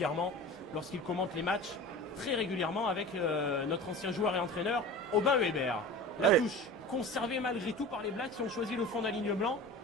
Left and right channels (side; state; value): both; normal; correlation 0.35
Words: lorsqu'il commente les matchs, très régulièrement avec notre ancien joueur et entraîneur Aubin Weber. La touche conservée malgré tout par les Blacks qui ont choisi le fond d'aligne blanc